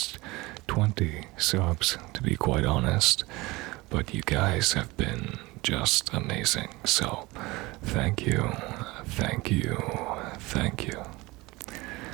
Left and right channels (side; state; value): left; quieter; 22.0 dB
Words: 20 subs, to be quite honest. But you guys have been just amazing. So, thank you, thank you, thank you.